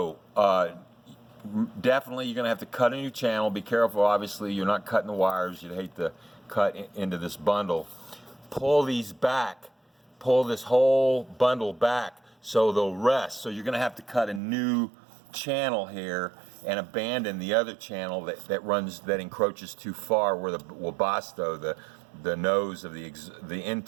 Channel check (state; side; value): drops out; left; at 14.4 s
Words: definitely you're going to have to cut a new channel. Be careful, obviously you're not cutting the wires. You'd hate to cut into this bundle. Pull these back, pull this whole bundle back so they'll rest. So you're going to have to cut a new channel here and abandon the other channel that encroaches too far, where the Webasto, the nose of the